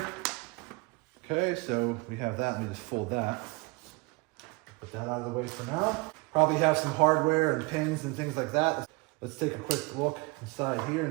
Okay, so we have that. Let me just fold that. Put that out of the way for now. Probably have some hardware and pins and things like that. Let's take a quick look inside here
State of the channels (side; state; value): left; quieter; 26.0 dB